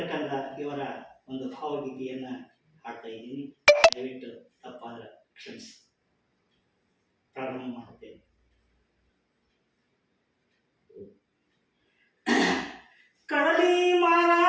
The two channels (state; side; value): identical; both; correlation 1.00